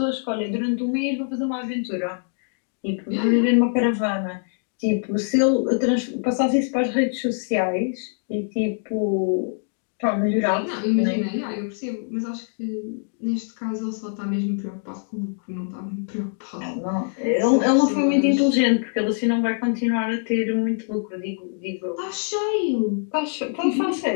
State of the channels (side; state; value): right; silent; digital silence